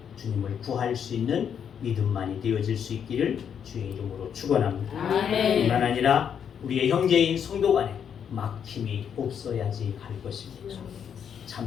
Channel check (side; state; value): right; quieter; 8.0 dB